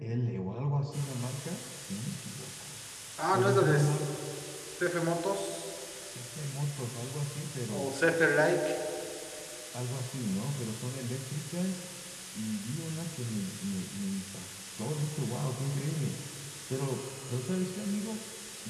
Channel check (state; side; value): identical; both; correlation 1.00